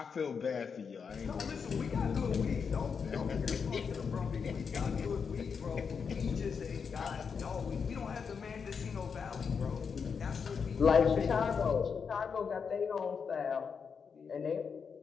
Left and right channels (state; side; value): quieter; right; 6.1 dB